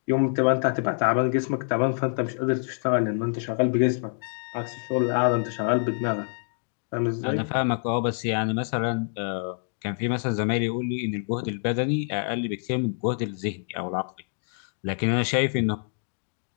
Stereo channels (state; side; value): silent; right; digital silence